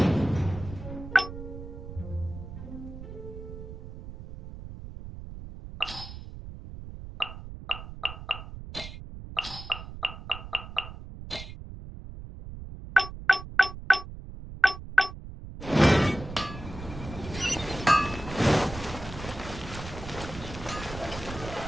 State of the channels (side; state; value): right; noise; rumble, 11 dB below the sound